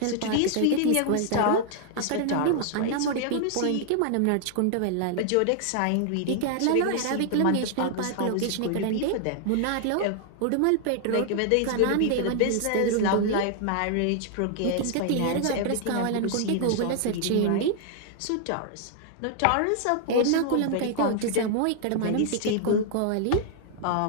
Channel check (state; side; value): different; both; correlation 0.00